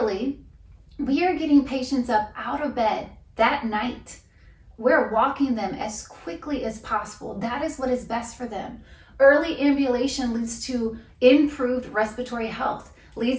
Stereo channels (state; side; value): identical; both; correlation 1.00